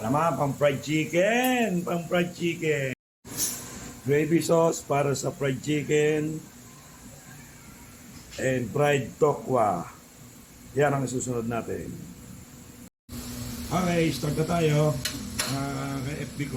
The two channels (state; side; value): identical; both; correlation 1.00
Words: naman, pang fried chicken. Pang fried chicken. Gravy sauce para sa fried chicken. And fried tokwa. Yan ang susunod natin. Okay, start na tayo. Kay FB